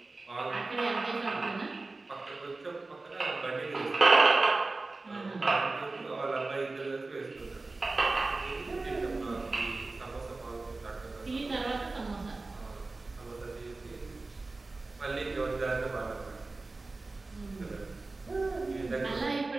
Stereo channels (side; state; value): left; quieter; 3.4 dB